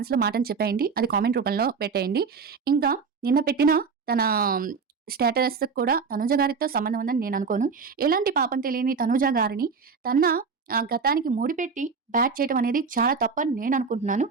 మాటని చెప్పేయండి. అది కామెంట్ రూపంలో పెట్టేయండి. ఇంకా నిన్న పెట్టిన తన స్టేటస్‌కి కూడా తనుజ గారితో సంబంధం ఉందని నేను అనుకోను. ఎలాంటి పాపం తెలియని తనుజ గారిని తన గతానికి ముడిపెట్టి బ్యాట్ చేయడం అనేది చాలా తప్పని నేను అనుకుంటున్నాను.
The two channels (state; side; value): quieter; left; 5.3 dB